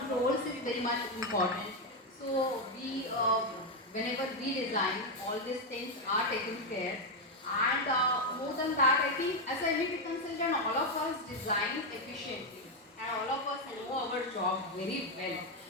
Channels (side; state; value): both; normal; correlation 0.05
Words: is very much important. So we, whenever we design, all these things are taken care. And more than that, I think as a MEP consultant, all of us design efficiently, and all of us know our job very well.